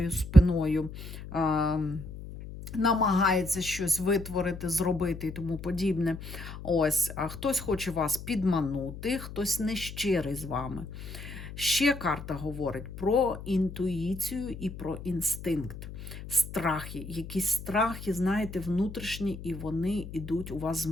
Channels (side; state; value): left; noise; hum, 11 dB below the sound